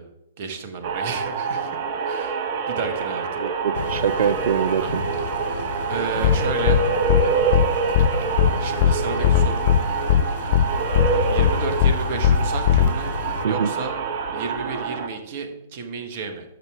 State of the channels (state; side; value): inverted; both; correlation -0.37